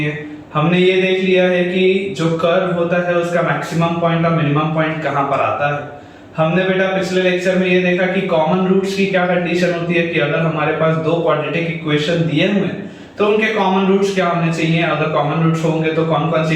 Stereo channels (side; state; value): both; identical; correlation 1.00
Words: हैं। हमने ये देख लिया है कि जो कर्व होता है उसका मैक्सिमम पॉइंट और मिनिमम पॉइंट कहाँ पर आता है। हमने बेटा पिछले लेक्चर में ये देखा कि कॉमन रूट्स की क्या कंडीशन होती है कि अगर हमारे पास दो क्वाड्रेटिक इक्वेशन दिए हुए हैं तो उनके कॉमन रूट्स क्या होने चाहिए, अगर कॉमन रूट्स होंगे तो कौन कौन